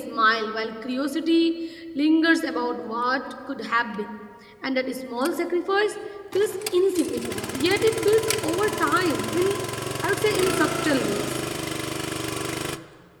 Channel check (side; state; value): both; identical; correlation 1.00